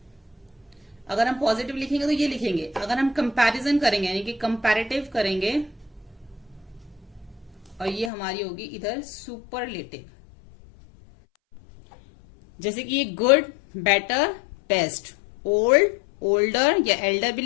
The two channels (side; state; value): right; drops out; at 8.1 s